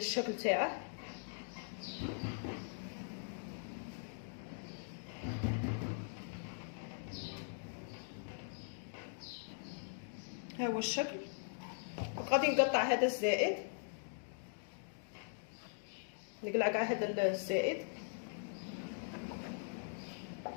تاعه. ها هو الشكل. غادي نقطع هذا الزائد، نقلع كاع هذا الزائد.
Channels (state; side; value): silent; right; digital silence